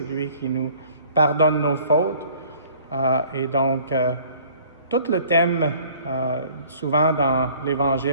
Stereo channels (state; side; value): inverted; both; correlation -0.53